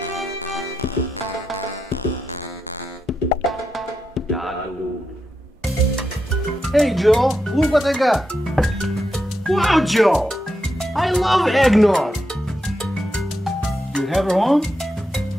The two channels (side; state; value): both; normal; correlation 0.85